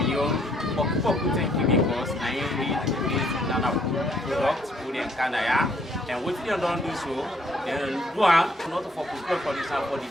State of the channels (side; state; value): both; normal; correlation 0.67